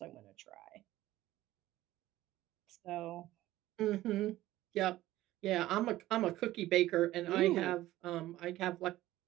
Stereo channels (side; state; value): left; quieter; 15.7 dB